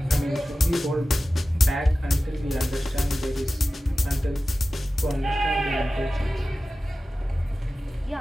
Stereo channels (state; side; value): normal; both; correlation 0.95